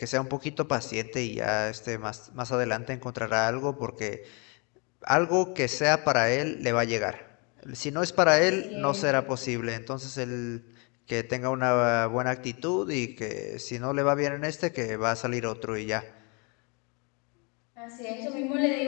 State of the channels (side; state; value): right; quieter; 32.7 dB